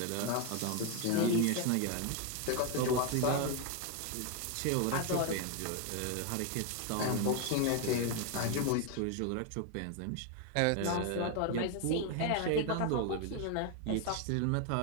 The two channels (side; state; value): both; different; correlation 0.01